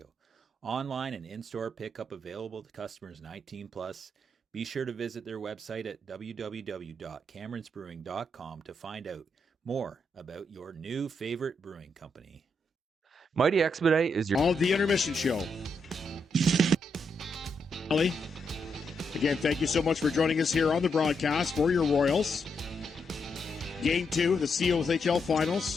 Online and in-store pickup available to customers 19 plus. Be sure to visit their website at www.cameronsbrewing.com to find out more about your new favorite brewing company. Mighty Expedite is your... All the intermission show. Ali, again, thank you so much for joining us here on the broadcast for your Royals. Game 2 of the COSHL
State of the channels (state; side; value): normal; both; correlation 0.80